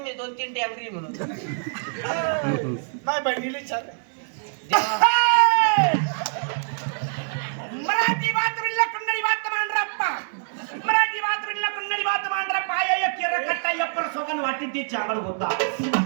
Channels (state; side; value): silent; left; digital silence